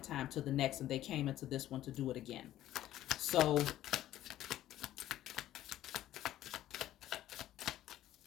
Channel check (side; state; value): right; quieter; 13.4 dB